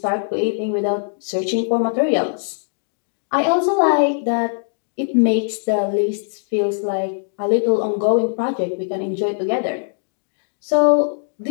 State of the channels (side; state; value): right; silent; digital silence